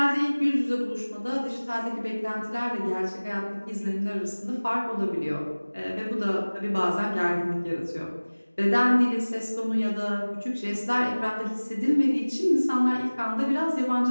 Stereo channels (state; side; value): inverted; both; correlation -1.00